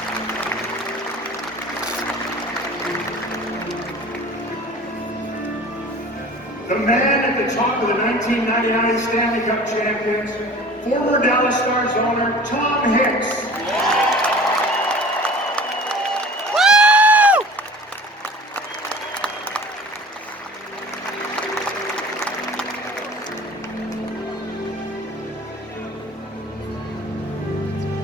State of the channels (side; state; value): both; normal; correlation 0.44